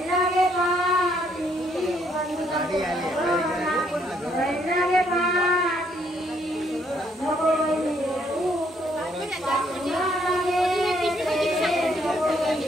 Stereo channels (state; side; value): normal; both; correlation 0.70